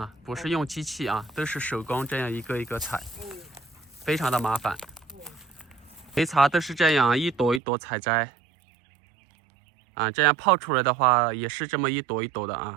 不是用机器啊，都是手工这样一个一个采，非常的麻烦。梅茶都是这样一朵一朵采摘，啊，这样泡出来的话也是这么一朵一朵的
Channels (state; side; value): drops out; left; at 7.6 s